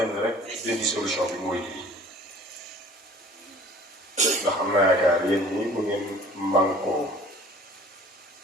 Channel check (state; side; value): normal; both; correlation 0.49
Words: ni rek benn solution bi mooy lii ndax am naa yaakaar yéen ñi bu ngeen mànkoo